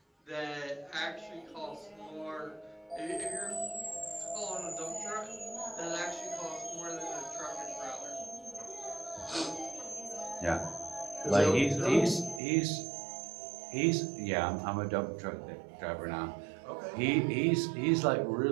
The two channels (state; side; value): drops out; left; at 12.4 s